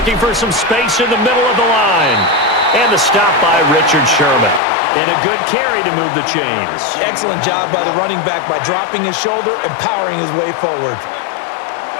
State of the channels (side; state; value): right; drops out; at 4.6 s